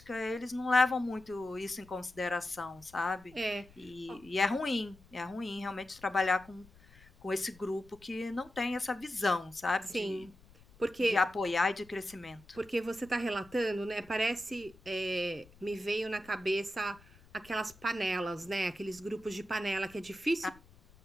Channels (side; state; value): left; noise; rumble, 25 dB below the sound